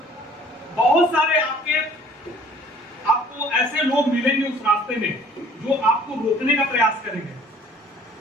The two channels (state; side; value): normal; both; correlation 0.54